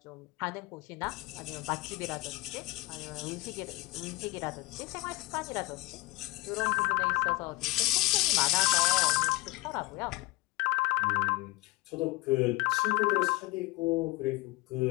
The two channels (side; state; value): right; quieter; 20.8 dB